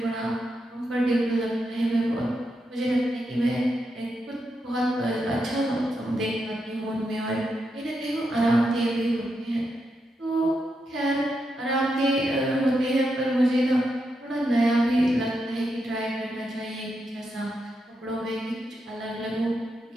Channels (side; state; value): both; normal; correlation 0.84